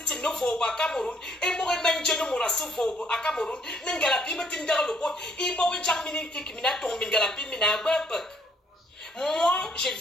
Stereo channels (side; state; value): both; normal; correlation 0.66